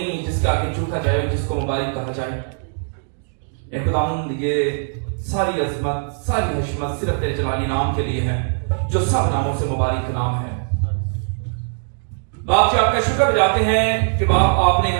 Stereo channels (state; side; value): silent; left; digital silence